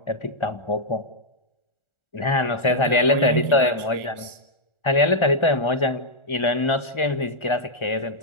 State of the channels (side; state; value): right; late; 1.4 ms